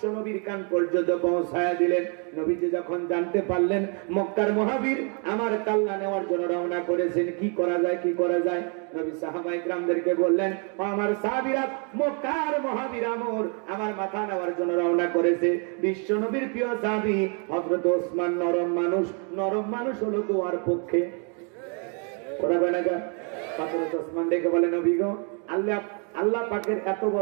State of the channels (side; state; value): left; quieter; 38.0 dB